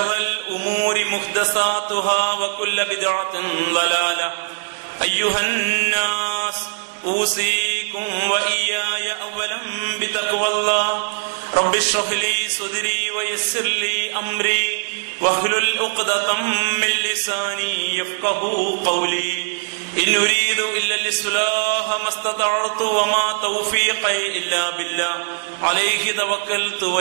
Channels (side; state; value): left; silent; digital silence